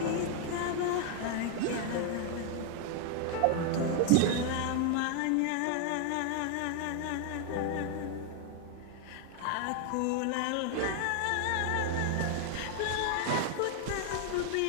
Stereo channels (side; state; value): both; different; correlation 0.00